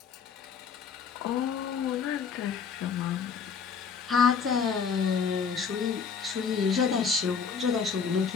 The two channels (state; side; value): quieter; right; 6.2 dB